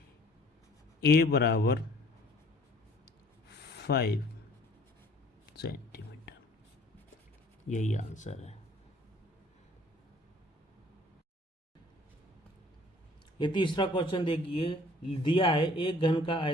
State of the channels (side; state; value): both; normal; correlation 0.54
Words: a बराबर 5 सेंटीमीटर, यही आंसर है। ये तीसरा क्वेश्चन देखिए, दिया है एक घन का